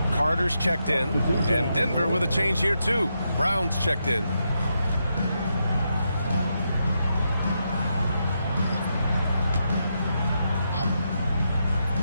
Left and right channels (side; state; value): both; inverted; correlation -0.83